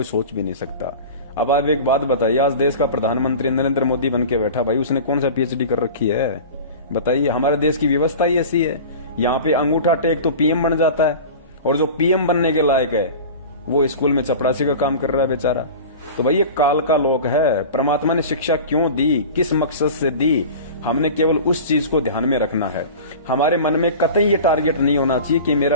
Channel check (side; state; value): both; inverted; correlation -0.35